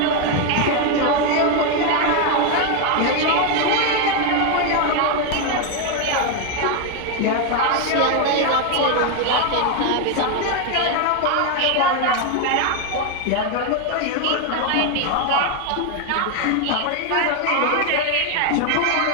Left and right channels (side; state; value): both; different; correlation 0.01